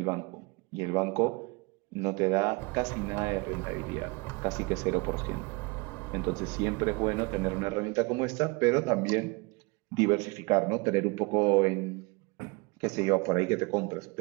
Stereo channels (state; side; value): quieter; left; 27.1 dB